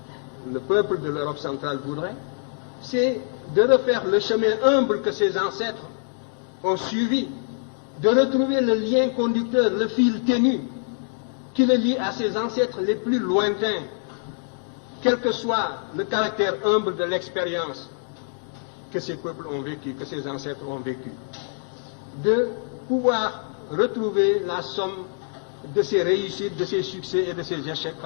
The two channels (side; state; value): right; silent; 56 dB below the other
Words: le peuple de l'Europe centrale voudrait, c'est de refaire le chemin humble que ses ancêtres ont suivi, de retrouver le lien conducteur, le fil ténu qui le lie à ses ancêtres les plus lointains, quel que soit le caractère humble de l'expérience que ces peuples ont vécu, que ces ancêtres ont vécu. De pouvoir retrouver la somme de ses réussites, de ses succès et de ses échecs,